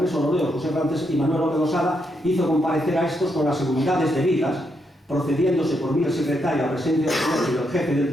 los reos José Francés y Manuel López Losada, hizo comparecer a estos con las seguridades debidas, procediéndose por mí el secretario a presencia del jefe del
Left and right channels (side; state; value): both; normal; correlation 0.79